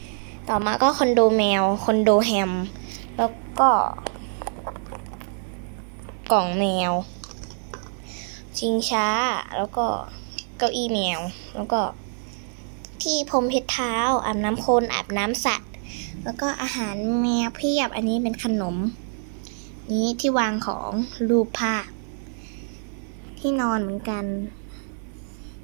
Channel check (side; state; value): left; silent; 62 dB below the other